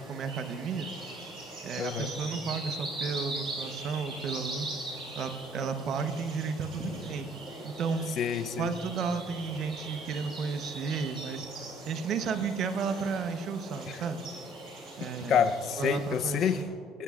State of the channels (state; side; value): normal; both; correlation 0.58